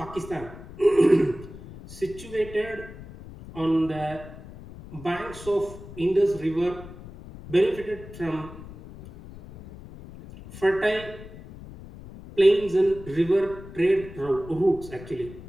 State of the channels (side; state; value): left; noise; rumble, 15 dB below the sound